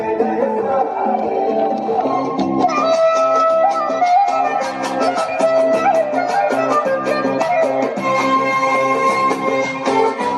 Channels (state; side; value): identical; both; correlation 1.00